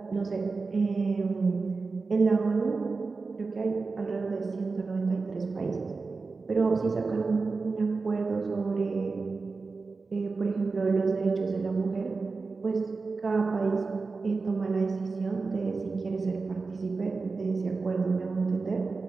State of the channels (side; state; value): left; quieter; 4.2 dB